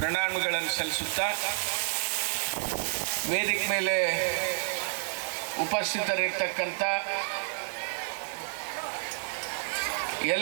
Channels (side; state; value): left; silent; digital silence